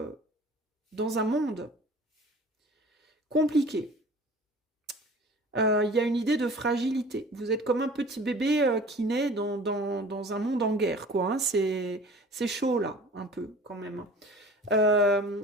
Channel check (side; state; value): both; normal; correlation 0.44